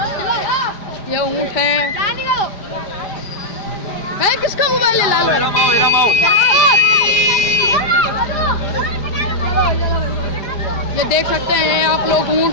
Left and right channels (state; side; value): late; right; 5.0 ms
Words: ये ऊँट है। किसका मोबाइल है लाल? ये देख सकते हैं आप लोग ऊँट,